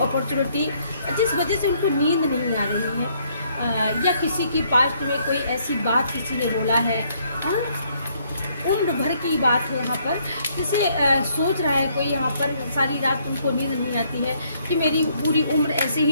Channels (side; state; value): both; inverted; correlation -0.68